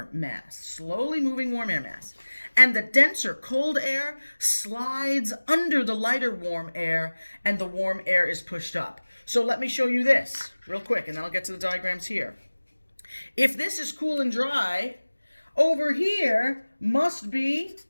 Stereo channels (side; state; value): both; inverted; correlation -1.00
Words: mass. Slowly moving warm air mass. And the denser cold air slides under the lighter warm air, and the warm air is pushed up. So let me show you this real quick, and then I'll get to the diagrams here. If this is cool and dry, over here must be